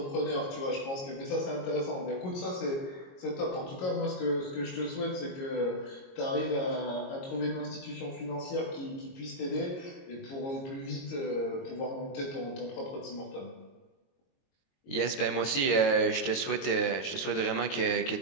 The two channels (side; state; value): right; late; 22 ms